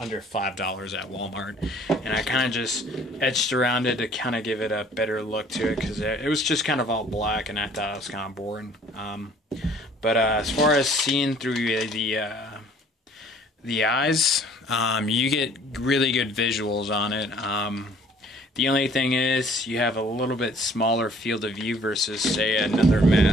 $5 at Walmart, and I kind of just etched around it to kind of give it a better look to it, because it was just kind of all black and I thought it was kind of boring. But as far as seeing through the eyes, you get really good visuals on it. The only thing is you have a little bit smaller field of view versus, say, another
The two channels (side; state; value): both; normal; correlation 0.55